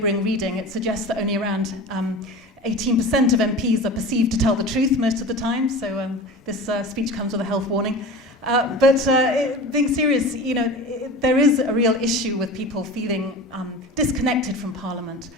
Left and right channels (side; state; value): both; normal; correlation 0.33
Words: reading. It suggests that only around 18% of MPs are perceived to tell the truth most of the time, so this speech comes with a health warning. But being serious, you know, there is a real issue with people feeling disconnected from Parliament